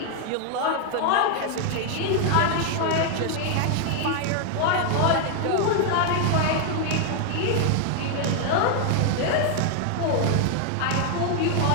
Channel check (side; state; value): both; different; correlation 0.00